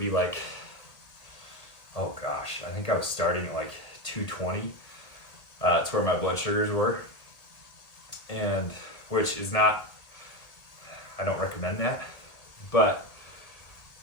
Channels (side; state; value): right; late; 1.7 ms